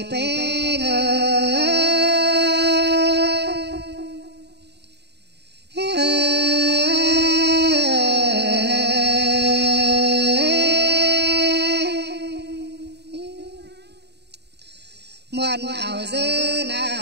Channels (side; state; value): left; late; 0.49 ms